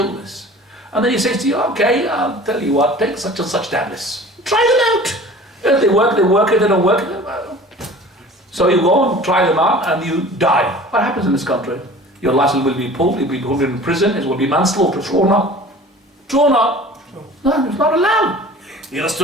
And then he says to you, okay, I'll tell you what, take such and such tablets. Try them out. If they work, they work. If they don't work, so you go and try them out and you die. What happens in this country? Your license will be pulled, you'll be put in prison, it will be manslaughter, thrown up. Thrown up. No, it's not allowed. He has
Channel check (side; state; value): both; normal; correlation 0.43